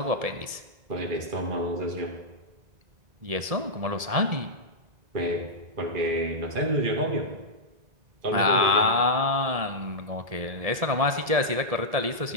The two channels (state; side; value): late; left; 1.7 ms